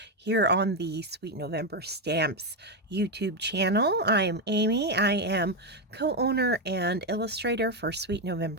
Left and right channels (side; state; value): both; normal; correlation 0.06